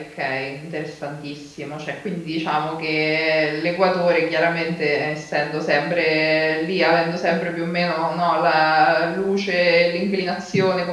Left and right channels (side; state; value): both; identical; correlation 1.00